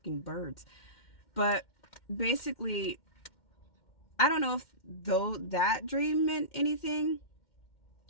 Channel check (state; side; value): late; right; 2.1 ms